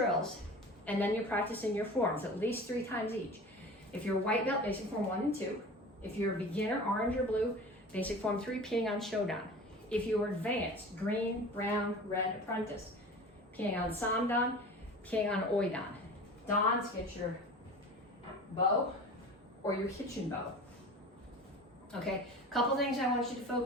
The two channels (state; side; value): normal; both; correlation 0.37